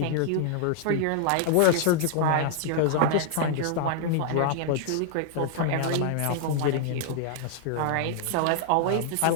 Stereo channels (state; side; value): different; both; correlation -0.01